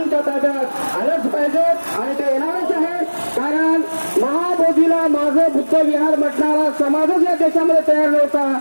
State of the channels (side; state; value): both; inverted; correlation -1.00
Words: ताब्यात आलंच पाहिजे आणि ते येणारच आहे. कारण महाबोधीला माझं बुद्ध विहार म्हटणारा समाजच या देशामध्ये तयार नव्हता.